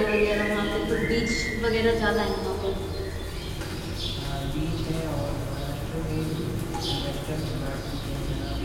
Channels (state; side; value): identical; both; correlation 1.00